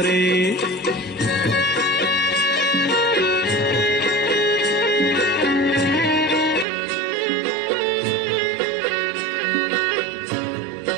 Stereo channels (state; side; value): drops out; left; at 6.7 s